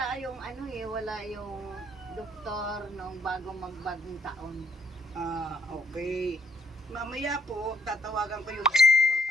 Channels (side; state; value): both; normal; correlation 0.68